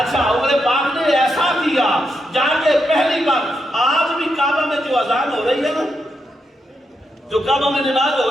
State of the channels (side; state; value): both; normal; correlation 0.83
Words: عمر پاک نے ایسا کیا جا کے پہلی بار آج بھی کعبہ میں جو اذان ہو رہی ہے نا جو کعبہ میں نماز ہو